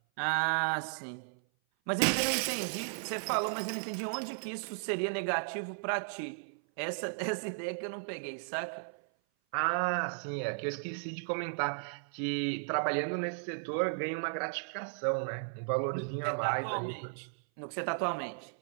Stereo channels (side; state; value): left; silent; 54 dB below the other